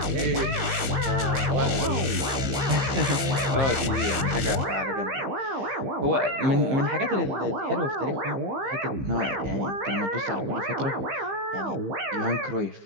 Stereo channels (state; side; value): late; left; 15 ms